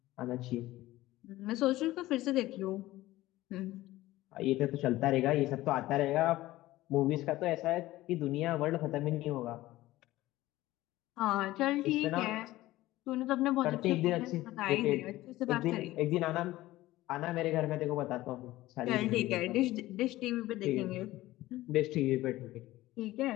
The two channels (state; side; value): quieter; right; 16.9 dB